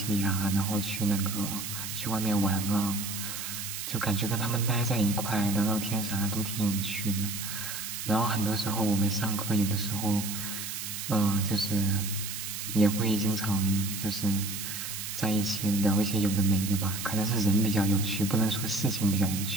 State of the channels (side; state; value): right; noise; hiss, 6 dB below the sound